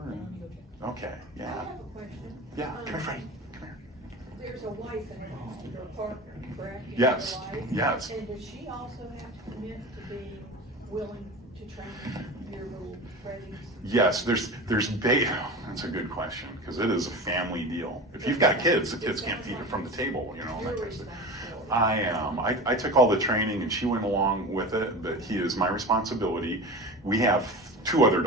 Okay, I yeah. have a question. Yeah, come here, Freddie, come here. There's a wife and your partner, correct? You Yes, have a wife? yes. And does she also have to commit to being willing to train your little Freddies? Yes, that's a good question, because it is a family deal. If you've got kids, the kids can't feed it from the table, you know, that Your kind of thing. responsibility. I am. I took all the training and she went along with it, but he is my responsibility. We have 2 other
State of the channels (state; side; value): normal; both; correlation 0.31